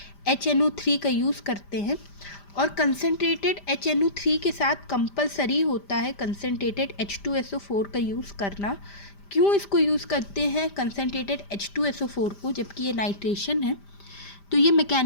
HNO3 का यूज़ करते हैं, और कंसनट्रेटेड HNO3 के साथ कंपलसरी होता है कंसनट्रेटेड H2SO4 का यूज़ करना। क्यों इसको यूज़ करते हैं कंसनट्रेटेड H2SO4 को, जबकि ये नाइट्रेशन है? तो ये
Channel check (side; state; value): right; late; 5.0 ms